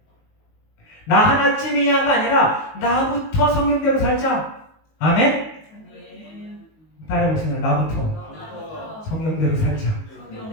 나 하나쯤이야가 아니라 나부터 성경대로 살자. 아멘? 따라해보세요. 나부터 성경대로 살자.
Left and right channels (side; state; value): right; late; 19 ms